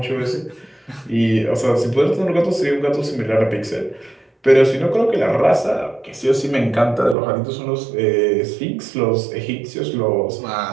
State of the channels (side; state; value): left; drops out; at 7.2 s